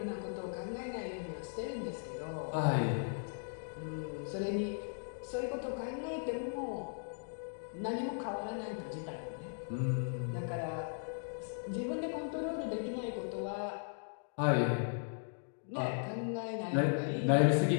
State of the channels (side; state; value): right; silent; digital silence